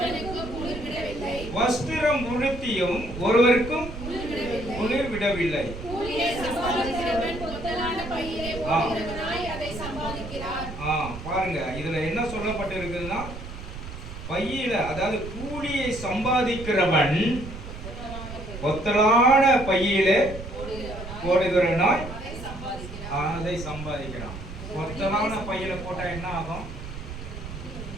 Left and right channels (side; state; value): right; noise; rumble, 10 dB below the sound